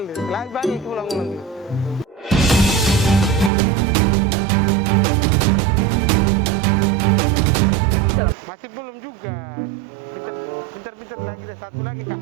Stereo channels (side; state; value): left; drops out; at 3.5 s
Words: Lagi balik ulang-ulang. Masih belum juga. Pintar-pintar lagi deh, satu lagi kak.